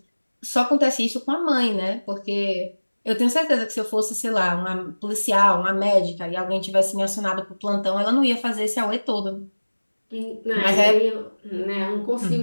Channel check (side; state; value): both; inverted; correlation -1.00